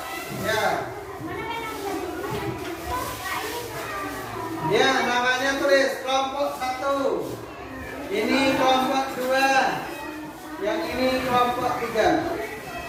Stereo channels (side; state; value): both; identical; correlation 1.00